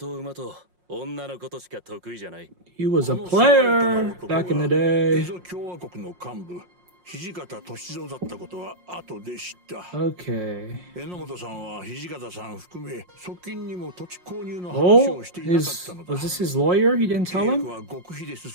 馬と女のことしか得意じゃない。He was a player back in the day. 共和国の幹部、土方歳三だったことは後で知った。Okay. 榎本さんは土方さん含め側近にも土地購入の話をしていなかったのだ。Was this his lawyer? He didn't tell him? は極秘で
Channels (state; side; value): late; left; 5.6 ms